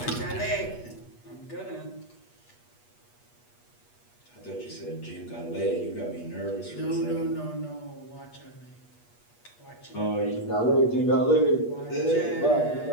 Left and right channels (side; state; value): right; late; 8.3 ms